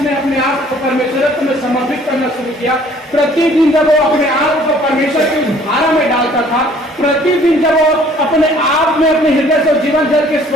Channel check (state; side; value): normal; both; correlation 0.56